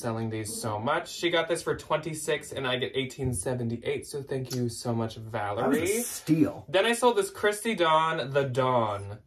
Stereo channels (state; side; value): identical; both; correlation 1.00